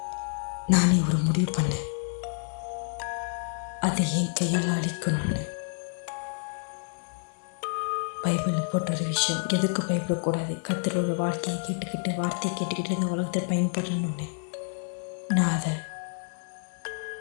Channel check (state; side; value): silent; right; 56 dB below the other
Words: நானே ஒரு முடிவு பண்ணேன், அதை என் கையால் அழிக்கணும்னு. பைபிளில் போட்ட ஒரு விஷயம், எதுக்கு பயப்படக்கூடாது, கத்தரோட வாழ்க்கையை கேட்டுக்கிட்டு வார்த்தையை கேட்டுக்கிட்டு இந்த உலகத்தில் பயன்படணும்னு நான் அதை